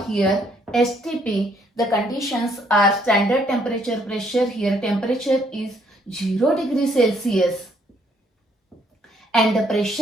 here STP, the conditions are standard temperature, pressure. Here temperature is 0 degree Celsius and the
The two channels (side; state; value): both; normal; correlation 0.67